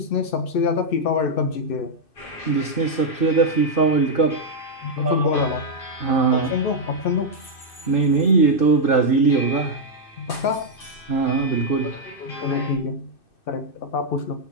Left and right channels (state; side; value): late; right; 2.6 ms